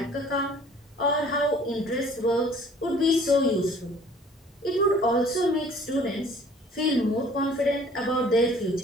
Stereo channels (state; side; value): normal; both; correlation 0.53